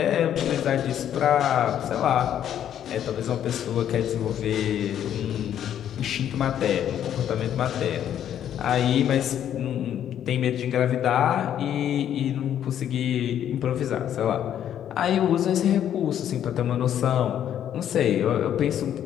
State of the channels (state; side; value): quieter; right; 10.2 dB